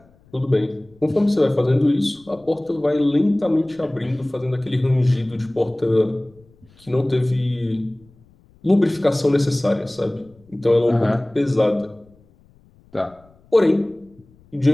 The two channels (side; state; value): left; noise; rumble, 30 dB below the sound